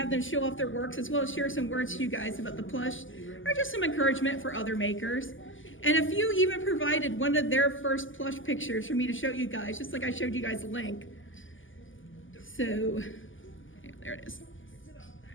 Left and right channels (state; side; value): late; right; 0.58 ms